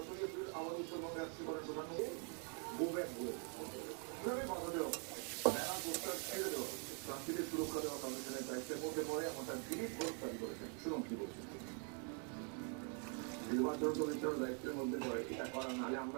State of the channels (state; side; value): quieter; left; 39.9 dB